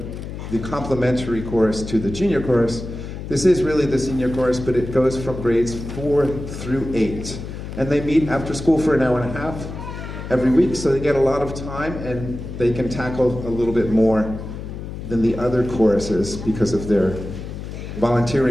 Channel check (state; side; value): noise; left; hum, 9 dB below the sound